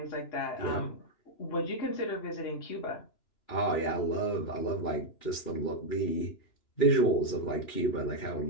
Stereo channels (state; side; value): late; right; 3.0 ms